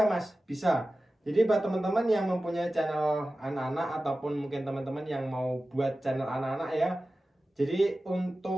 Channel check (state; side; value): normal; both; correlation 0.95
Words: Mas? Bisa. Jadi buat teman-teman yang mempunyai channel anak-anak ataupun mungkin teman-teman yang mau buat channel anak-anak ya. Jadi